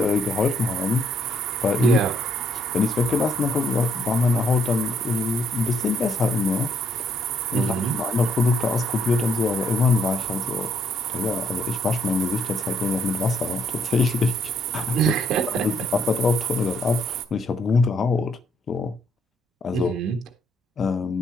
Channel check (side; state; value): both; normal; correlation 0.70